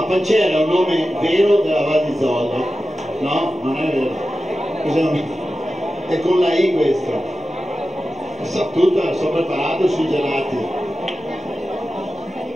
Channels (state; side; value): normal; both; correlation 0.93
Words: pancera è un nome vero della Val di Zoldo? No? Non è vero. Cos'è un... È con la I questo. So tutto, sono preparato sui gelati.